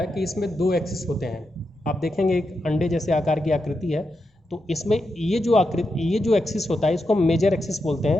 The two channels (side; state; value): both; normal; correlation 0.86